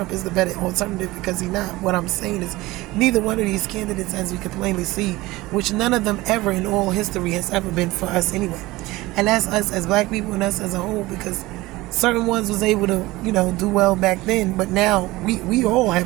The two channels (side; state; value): left; quieter; 19.5 dB